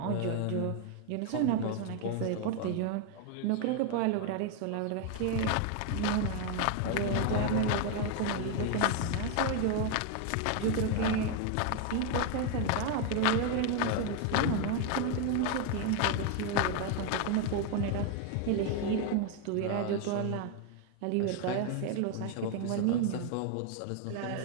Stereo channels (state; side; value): different; both; correlation 0.01